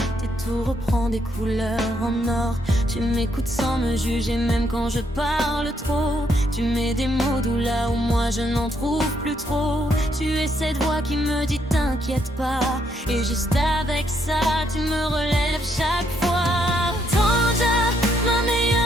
et tout reprend des couleurs en or. Tu m'écoutes sans me juger même quand je parle trop. Tu mets des mots doux là où moi je n'en trouve plus trop. Tu es cette voix qui me dit t'inquiète pas, et juste avec ça tu me relèves chaque fois. Tanja, ma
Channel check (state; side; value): normal; both; correlation 0.74